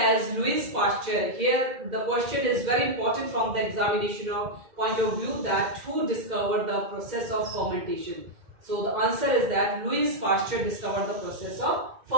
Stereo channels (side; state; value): left; late; 2.0 ms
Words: Louis Pasteur. Here the question is very important from the examination point of view that who discovered the process of fermentation. So the answer is that Louis Pasteur discovered the process of